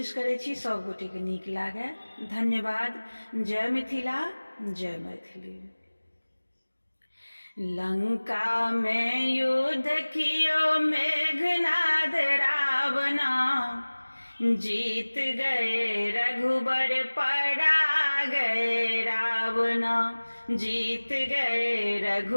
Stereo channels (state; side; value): inverted; both; correlation -1.00